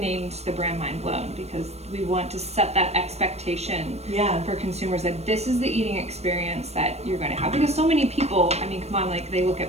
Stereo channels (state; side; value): late; left; 0.31 ms